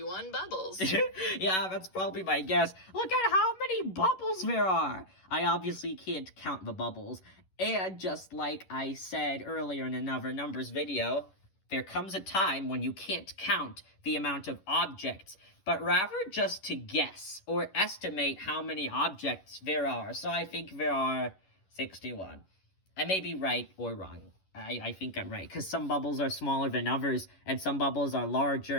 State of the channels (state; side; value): late; right; 11 ms